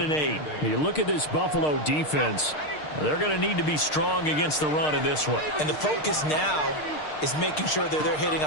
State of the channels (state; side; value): late; right; 6.6 ms